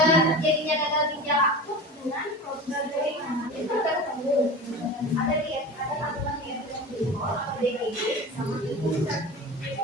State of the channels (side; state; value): both; normal; correlation 0.31